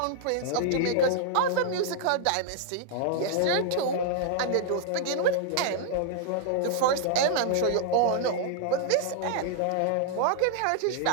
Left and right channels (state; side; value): different; both; correlation 0.00